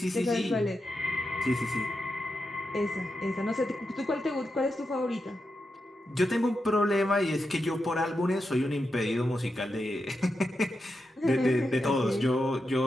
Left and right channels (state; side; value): normal; both; correlation 0.87